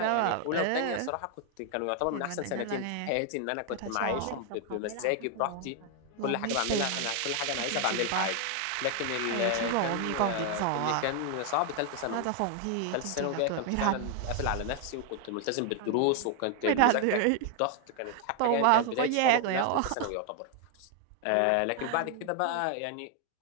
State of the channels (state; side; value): different; both; correlation 0.00